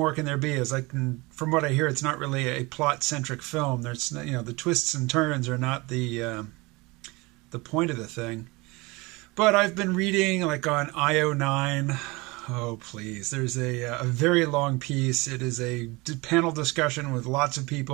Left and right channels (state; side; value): quieter; left; 24.4 dB